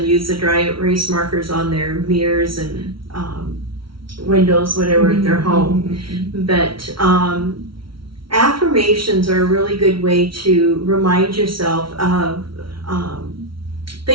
use the dry erase markers on their mirrors and windows, whatever, at their home. But affirmations are a really good way to remind yourself of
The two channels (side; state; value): left; late; 0.74 ms